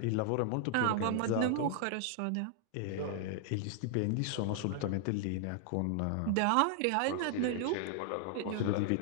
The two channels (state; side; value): different; both; correlation 0.00